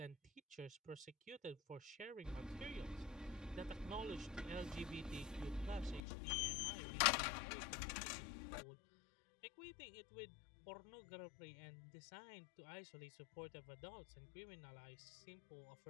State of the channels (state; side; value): drops out; right; at 6.0 s